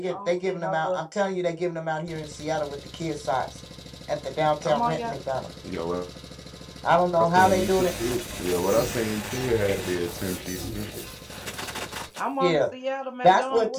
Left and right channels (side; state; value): both; identical; correlation 1.00